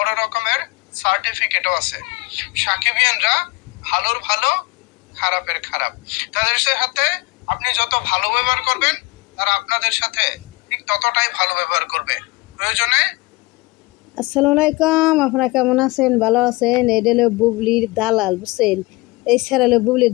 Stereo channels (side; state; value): right; quieter; 23.3 dB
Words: রকমের সার্টিফিকেটও আছে। সাকিবিয়ানরা ভালোর ভালো, খারাপের খারাপ। তাদের সাথে আপনি যত ভালো ব্যবহার করবেন, তারা আপনাদের সাথে ঠিক ততটাই ভালো ব্যবহার করবে। প্রয়োজনে আসসালামু আলাইকুম, আপনারা কেমন আছেন? ভালো আছেন? এটা হলো বুবলির দালাল, বুঝছেন? এই স্যার হলো বুবলির